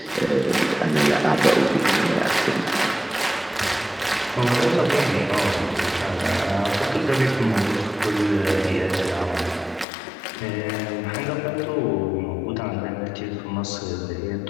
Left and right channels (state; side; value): drops out; right; at 9.9 s